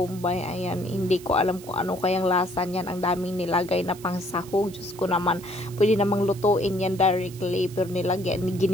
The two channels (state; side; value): noise; right; hiss, 19 dB below the sound